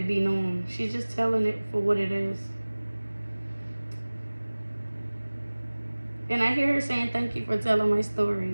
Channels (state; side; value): inverted; both; correlation -1.00